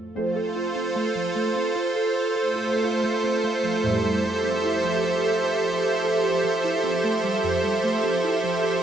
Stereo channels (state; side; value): normal; both; correlation 0.74